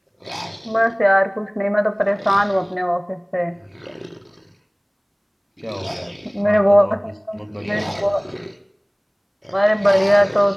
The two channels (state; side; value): identical; both; correlation 1.00